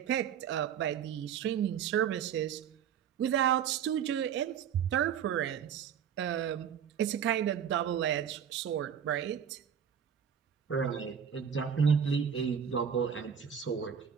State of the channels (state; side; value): quieter; left; 8.2 dB